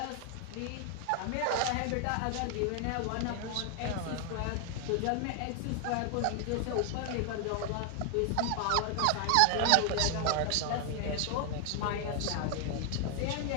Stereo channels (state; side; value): different; both; correlation 0.00